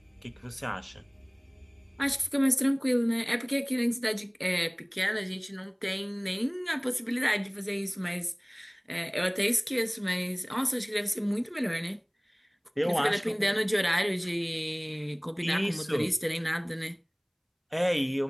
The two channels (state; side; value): identical; both; correlation 1.00